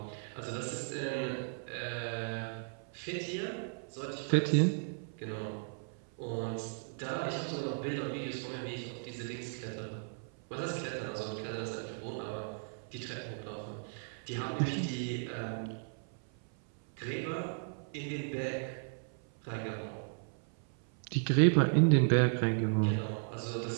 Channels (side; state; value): left; silent; 54 dB below the other